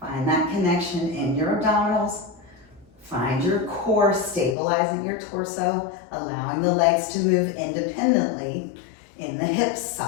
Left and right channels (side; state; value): right; drops out; at 4.5 s